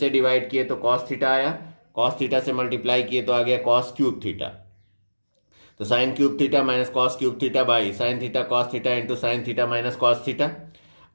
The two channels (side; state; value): both; inverted; correlation -1.00